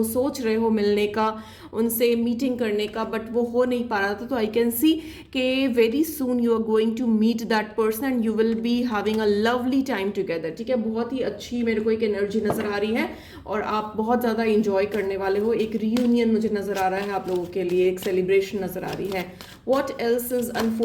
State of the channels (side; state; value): both; identical; correlation 1.00